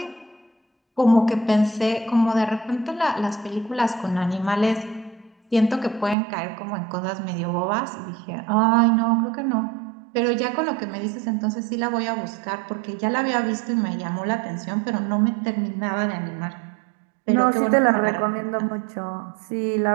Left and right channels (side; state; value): left; drops out; at 6.2 s